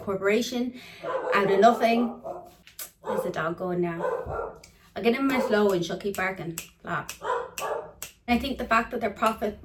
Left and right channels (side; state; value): both; identical; correlation 1.00